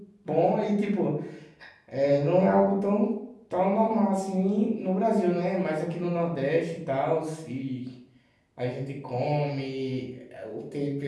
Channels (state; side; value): identical; both; correlation 1.00